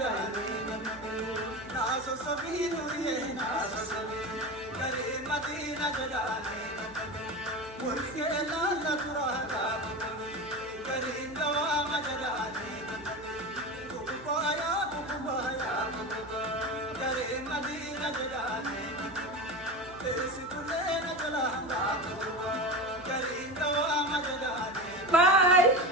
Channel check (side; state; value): right; noise; hum, 20 dB below the sound